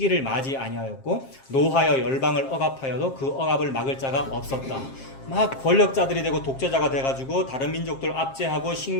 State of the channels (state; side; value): late; right; 7.5 ms